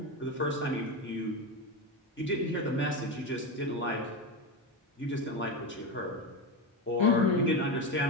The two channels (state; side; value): normal; both; correlation 0.16